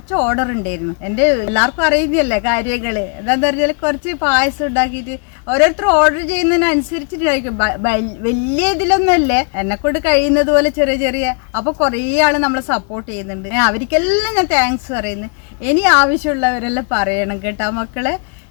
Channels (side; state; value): right; quieter; 38.8 dB